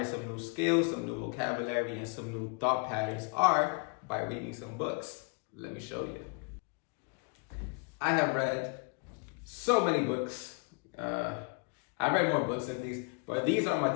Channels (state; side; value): quieter; right; 35.0 dB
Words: some new skills, some new vocabulary, and some new thought patterns are by reading some books. Let me show you. I have read so many books. I read more books than these, but these are my